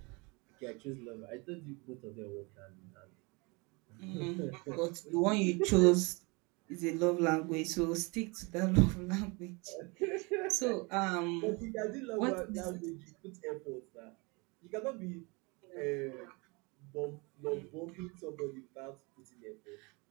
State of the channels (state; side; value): quieter; left; 28.4 dB